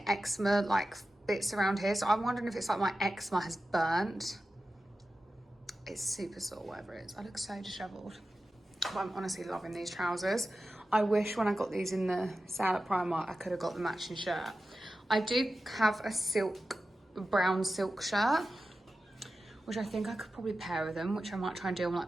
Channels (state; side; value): normal; both; correlation 0.93